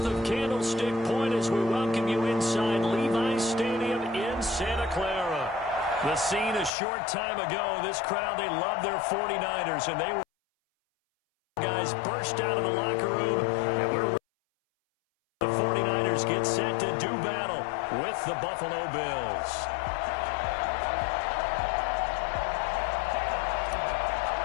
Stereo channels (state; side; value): drops out; right; at 6.7 s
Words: of Candlestick Point as we welcome you inside Levi's Stadium in Santa Clara. The scene a short time ago, this crowd, they love their 49ers, and they were guys burst out of the locker room, and we're the 49ers get set to do battle with the Buffalo Bills.